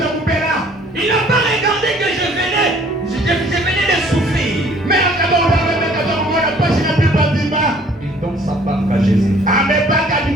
Il n'a pas regardé que je venais de souffrir. Il donne sa part à Jésus.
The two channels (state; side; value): normal; both; correlation 0.56